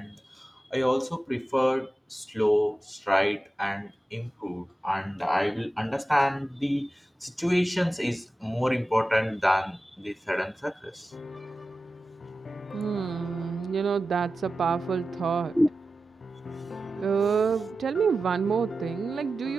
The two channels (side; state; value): both; normal; correlation 0.94